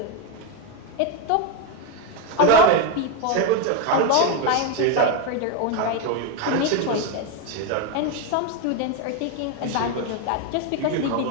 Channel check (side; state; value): both; different; correlation 0.03